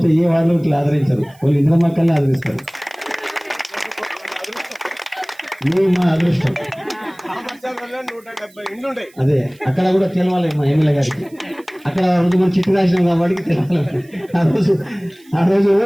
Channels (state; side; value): noise; right; hiss, 29 dB below the sound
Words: ఏ వాళ్ళు ఇట్లా ఆదరించరు, వాళ్ళు ఇందిరమ్మ కాలనీ ఆదరిస్తారు. మీ మా అదృష్టం అదే. అక్కడ కూడా తెలవాలి మా ఎమ్మెల్యే గారికి. అక్కడ రోజు మనం చిట్టు రాసినాం కాబట్టి తెలవాలి. ఆ రోజు